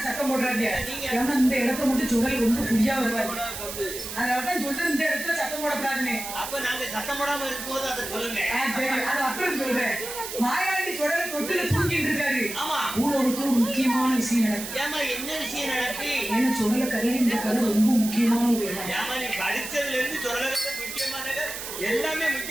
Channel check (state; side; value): noise; right; hiss, 8 dB below the sound